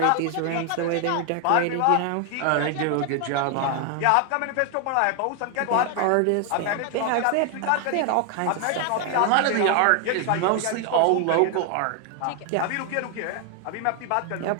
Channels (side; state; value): both; different; correlation 0.00